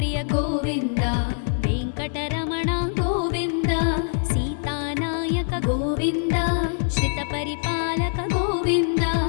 गोविन्द वेङ्कटरमण गोविन्द सीतानायक गोविन्द श्रितपरिपालक गोविन्द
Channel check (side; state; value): right; silent; 63 dB below the other